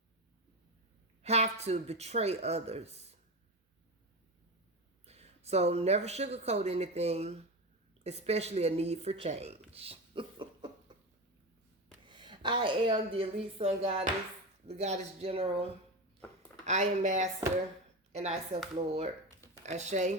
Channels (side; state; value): both; normal; correlation 0.20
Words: have to betray others. So never sugarcoat anything, especially a need for change. I am the elite sun goddess, the goddess general. I am master, and I self Lord.